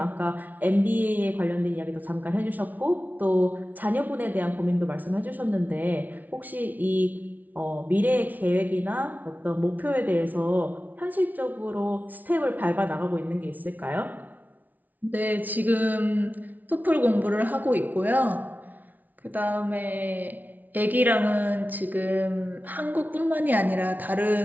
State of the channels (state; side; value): late; left; 0.079 ms